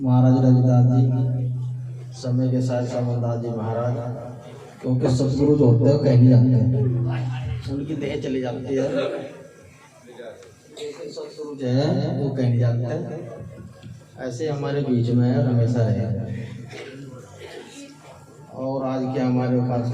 रविदास जी, समय के साथ समरदास जी महाराज, क्योंकि सतगुरु जो होते हैं कहीं नहीं जाते हैं, उनकी देह चली जाती है। सतगुरु जो है वो कहीं नहीं जाते हैं, ऐसे हमारे बीच में हमेशा रहे। और आज के हमारे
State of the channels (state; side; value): identical; both; correlation 1.00